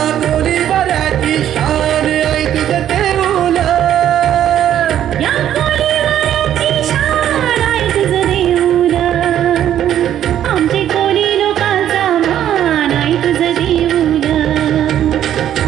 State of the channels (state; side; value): quieter; left; 10.9 dB